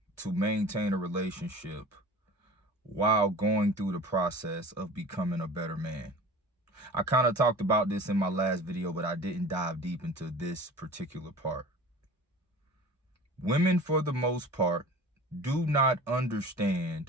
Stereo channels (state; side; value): normal; both; correlation 0.40